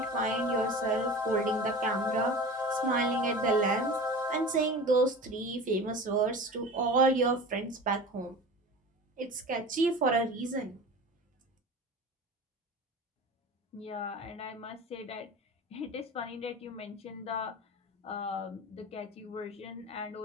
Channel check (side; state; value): both; normal; correlation 0.34